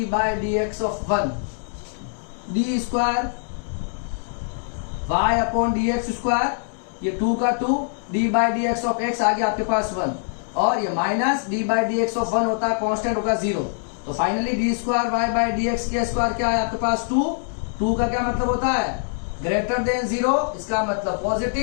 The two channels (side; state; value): right; silent; digital silence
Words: ऑफ 1, d²y/dx²। ये 2 का 2, d/dx ऑफ x आ गया आपके पास 1, और ये माइनस d/dx ऑफ 1 होता है, कांस्टेंट होगा 0। तो फाइनली d²y/dx के स्क्वायर क्या है आपके पास 2 का क्या मतलब होता है, ग्रेटर देन 0, इसका मतलब